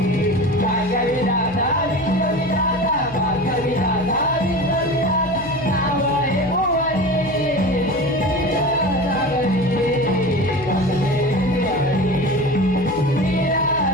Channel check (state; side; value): noise; left; hum, 15 dB below the sound